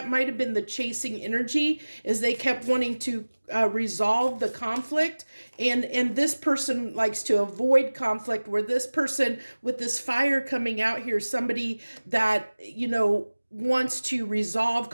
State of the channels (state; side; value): inverted; both; correlation -1.00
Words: might have been the chasing energy, is they kept wanting to resolve the conflict, and this person likes to avoid conflict, where this person with this fire coming out here, somebody that wants to resolve